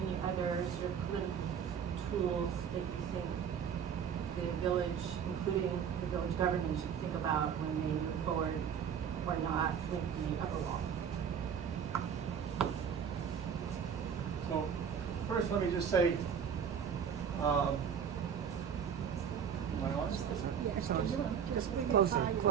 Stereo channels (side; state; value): left; quieter; 7.7 dB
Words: other sort of political tools that you think the village, including the village government, should think about when they move forward or not with the upper wall. So first, let me just say, am I on? Yes, just bring it Closer, farther.